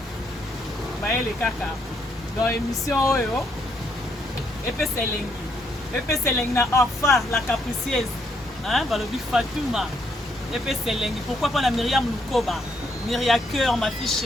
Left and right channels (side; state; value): both; normal; correlation 0.74